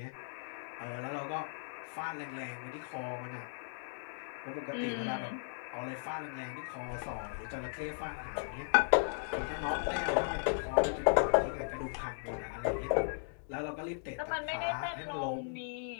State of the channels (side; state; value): right; silent; digital silence